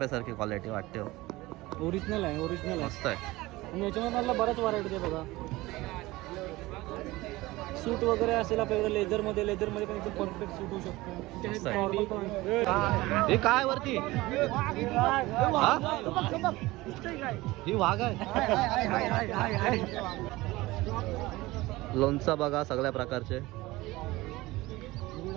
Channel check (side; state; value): left; quieter; 19.7 dB